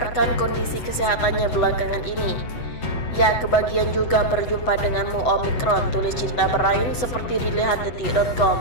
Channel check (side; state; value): right; late; 7.9 ms